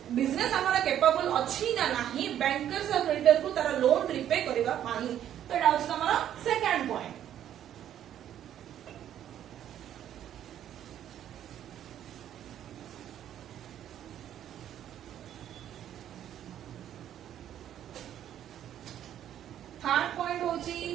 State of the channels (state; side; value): quieter; left; 10.8 dB